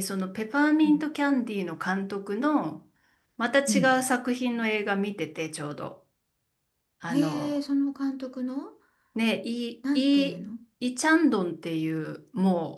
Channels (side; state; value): both; identical; correlation 1.00